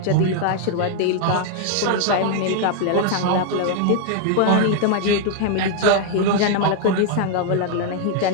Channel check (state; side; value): different; both; correlation 0.00